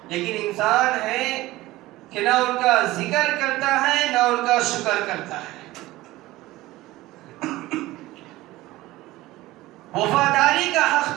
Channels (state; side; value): quieter; left; 17.9 dB